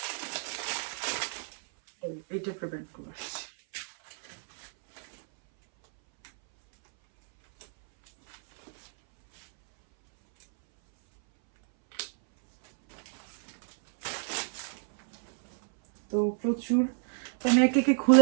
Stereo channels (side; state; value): left; silent; 58 dB below the other